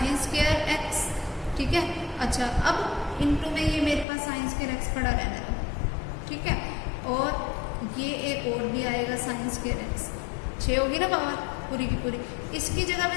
square x. ठीक है, अच्छा अब इनटू में ये मेरे पास साइन स्क्वायर एक्स पड़ा रहने दो। ठीक है, और ये एक और भी आएगा साइन स्क्वायर एक्स, 6 होगी ना पावर पूरी की पूरी, इसकी जगह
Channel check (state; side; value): drops out; right; at 4.0 s